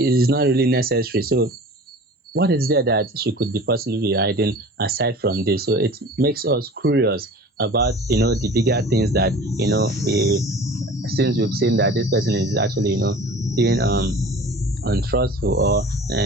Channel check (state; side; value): normal; both; correlation 0.41